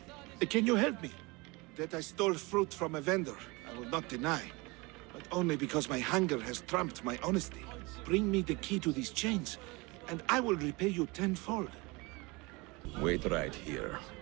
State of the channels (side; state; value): left; quieter; 25.3 dB